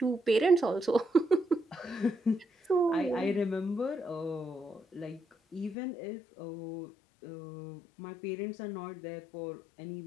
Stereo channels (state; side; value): drops out; right; at 5.8 s